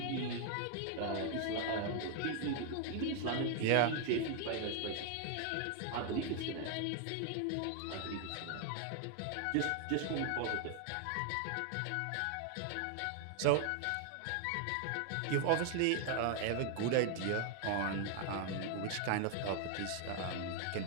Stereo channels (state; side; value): different; both; correlation 0.00